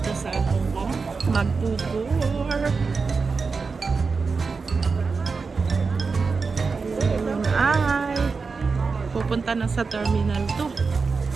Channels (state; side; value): quieter; left; 4.7 dB